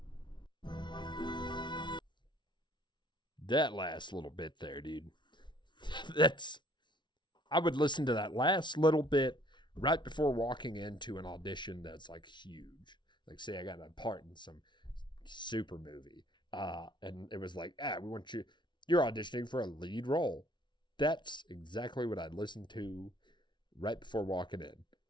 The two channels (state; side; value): late; right; 0.23 ms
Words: That last little bit there, dude. I would listen to that last little bit right before walking into an audition that's like huge. Like, say I got a part in some super movie. And it was like, we want you're auditioning for a lead role. That's exactly what I'd listen to right before walking in.